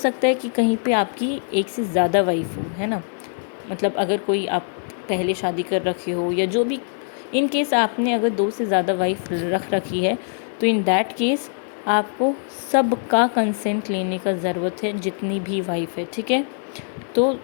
है कि कहीं पे आपकी एक से ज़्यादा वाइफ हो, है ना, मतलब अगर कोई आप पहले शादी कर रखे हो या जो भी, इन केस आपने अगर 2 से ज़्यादा वाइफ रख रखी है, तो इन दैट केस आपको सबका कंसेंट लेने का ज़रूरत है, जितनी भी वाइफ है। ठीक है, तो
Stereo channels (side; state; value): right; silent; 64 dB below the other